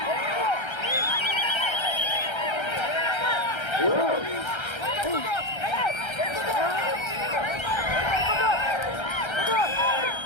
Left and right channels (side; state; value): right; late; 1.3 ms